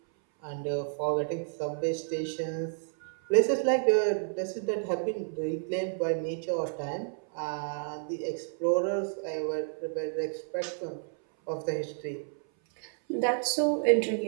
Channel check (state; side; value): silent; left; 57 dB below the other